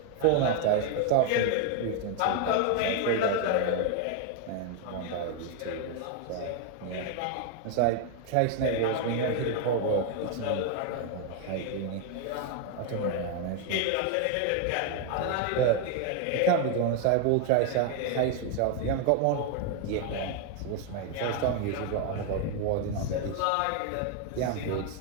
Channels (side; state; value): both; different; correlation 0.01